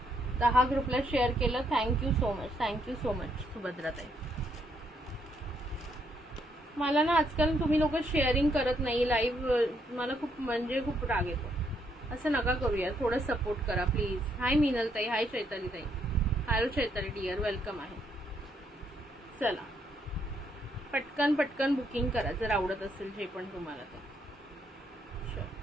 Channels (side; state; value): both; normal; correlation 0.74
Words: दहा ग्रुपला शेअर केलं. थँक्यू सो मच सुभद्राताई. मला ना आजकाल तुम्ही लोक शेअरिंग करत नाही लाईव्ह. मला खूप म्हणजे खूप राग येतो. असं नका करूया, थोडं सपोर्ट करा प्लीज. हाय मिनल ताई, हाय चैताली ताई. हॅलो चैताली डिअर, वेलकम आहे. चला पटकन बुकिंग करा जर आवडत असेल जे पण तुम्हाला ते.